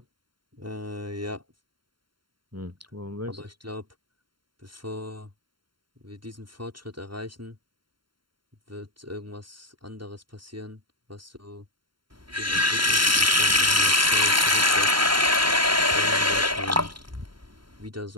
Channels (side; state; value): left; late; 0.73 ms